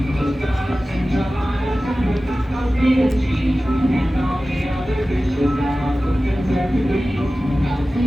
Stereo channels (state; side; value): normal; both; correlation 0.96